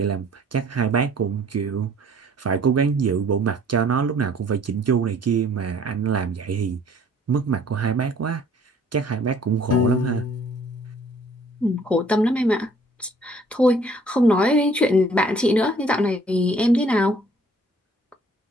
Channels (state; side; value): normal; both; correlation 0.57